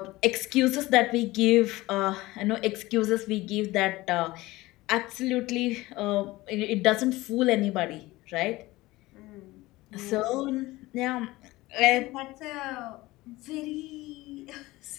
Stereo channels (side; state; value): right; quieter; 19.3 dB